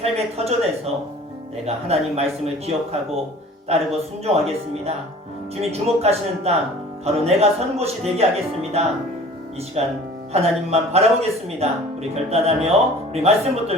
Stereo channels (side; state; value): both; normal; correlation 0.46